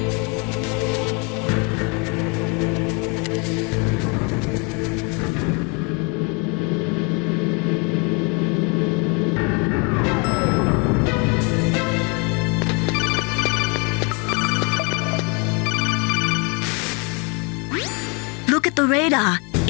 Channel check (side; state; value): right; quieter; 32.5 dB